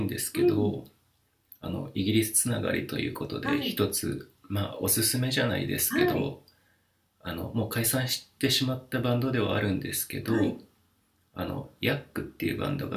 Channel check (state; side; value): identical; both; correlation 1.00